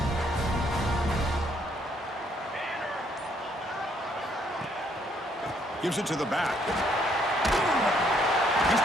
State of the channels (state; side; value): normal; both; correlation 0.68